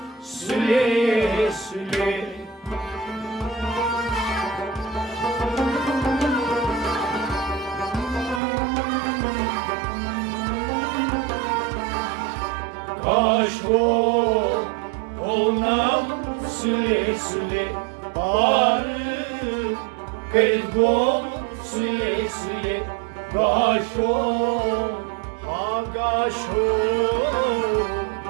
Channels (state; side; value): drops out; left; at 8.4 s